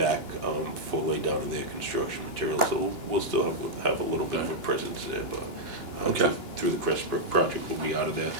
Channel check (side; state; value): right; late; 2.9 ms